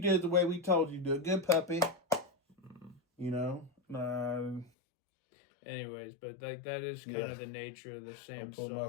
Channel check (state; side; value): drops out; right; at 4.7 s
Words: it the way we told you to. Good puppy. Mm. You know? Anyways, but that is kind of the nature of the samsara. I pulled my